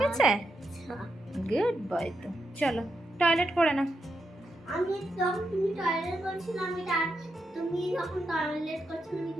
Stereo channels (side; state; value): both; normal; correlation 0.84